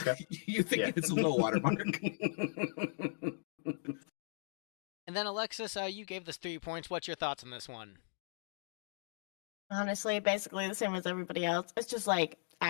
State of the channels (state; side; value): silent; right; digital silence